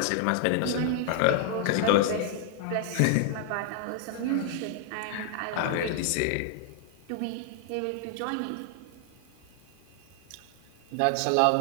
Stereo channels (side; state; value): both; different; correlation 0.00